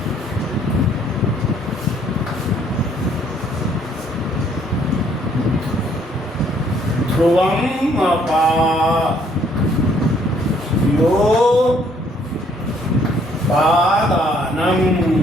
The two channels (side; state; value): both; normal; correlation 0.64